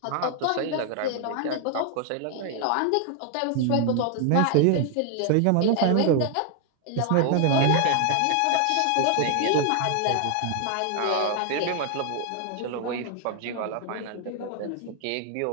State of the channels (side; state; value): both; different; correlation 0.00